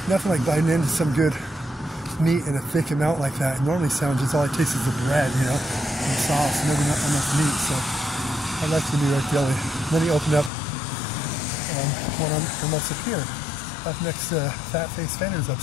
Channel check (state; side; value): drops out; right; at 10.5 s